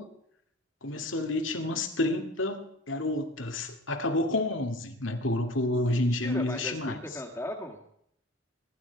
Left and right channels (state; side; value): normal; both; correlation 0.39